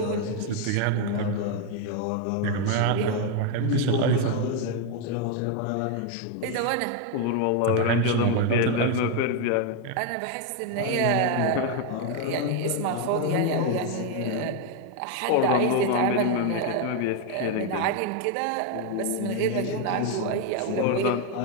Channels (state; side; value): different; both; correlation 0.01